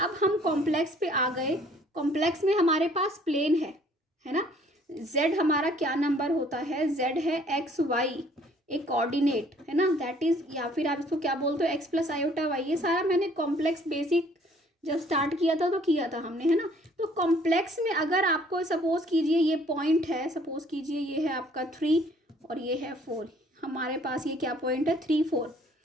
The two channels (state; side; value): normal; both; correlation 0.59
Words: हम कॉम्प्लेक्स पे आ गए, कॉम्प्लेक्स में हमारे पास प्लेन है ना। z हमारा क्या नंबर होता है, z है एक्स वाई, एक कोऑर्डिनेट है ना, दैट इज, या फिर आप इसको क्या बोलते हो, एक्स प्लस आयोटा वाई। ये सारा मैंने कॉम्प्लेक्स बेसिक जब स्टार्ट किया था तो किया था हमने, है ना। तो कॉम्प्लेक्स में अगर आपको सपोज कीजिए ये पॉइंट है, सपोज कीजिए ये है आपका 3 और ये है 4, हमारे पास ये क्या पॉइंट है, 3 4,